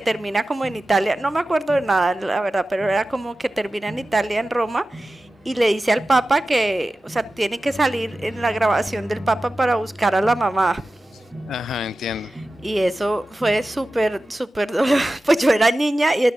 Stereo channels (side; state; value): both; normal; correlation 0.95